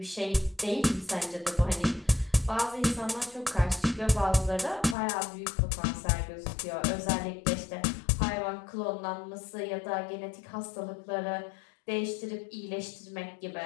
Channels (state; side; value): drops out; right; at 5.0 s